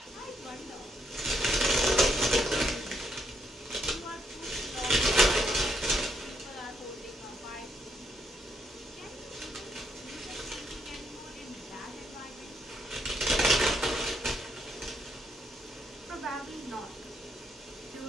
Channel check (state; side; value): normal; both; correlation 0.75